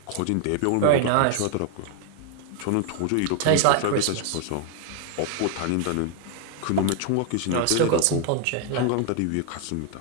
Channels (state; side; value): different; both; correlation 0.00